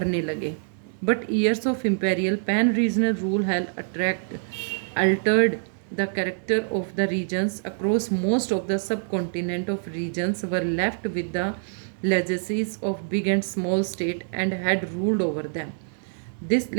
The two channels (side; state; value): left; silent; 61 dB below the other